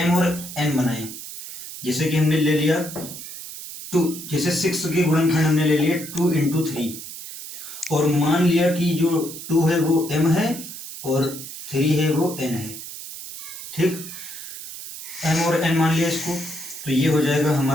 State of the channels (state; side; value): noise; right; hiss, 11 dB below the sound